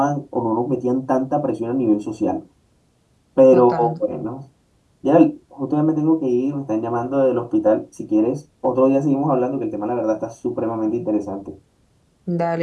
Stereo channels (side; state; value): both; identical; correlation 1.00